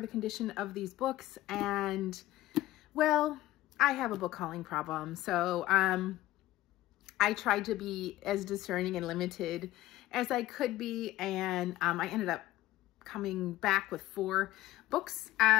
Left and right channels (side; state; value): right; quieter; 16.1 dB